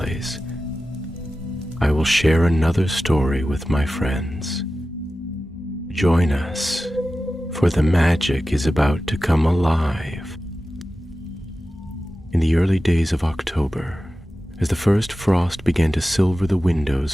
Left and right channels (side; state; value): both; normal; correlation 0.94